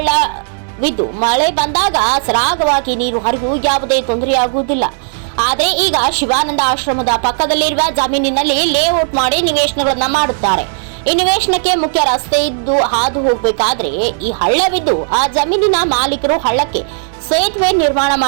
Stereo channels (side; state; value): left; silent; digital silence